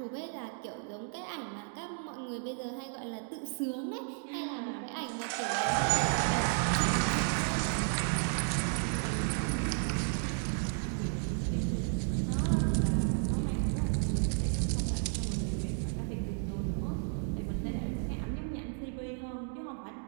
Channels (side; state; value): left; silent; 56 dB below the other